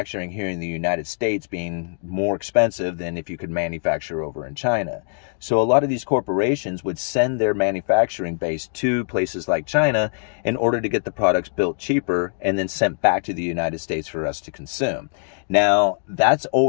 here in the United States being more expensive than if you could manufacture over in China. So a lot of these corporations would send their manufacturing base to places like China in order to get the products built cheaper and then sent back to the United States for us to consume. Now, that's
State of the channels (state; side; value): silent; right; digital silence